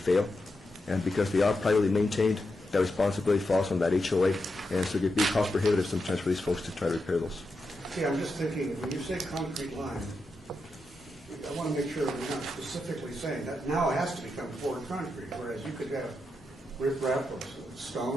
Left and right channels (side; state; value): both; normal; correlation 0.86